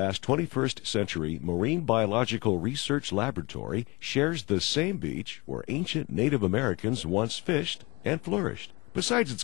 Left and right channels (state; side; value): quieter; right; 24.6 dB